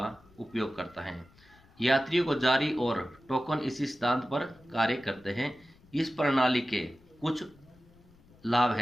उपयोग करता है। यात्रियों को जारी और टोकन इसी सिद्धांत पर कार्य करते हैं। इस प्रणाली के कुछ लाभ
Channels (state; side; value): noise; left; rumble, 28 dB below the sound